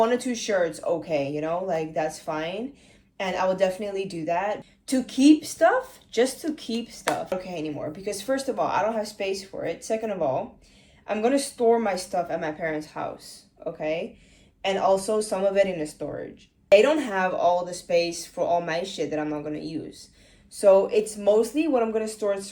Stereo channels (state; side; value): identical; both; correlation 1.00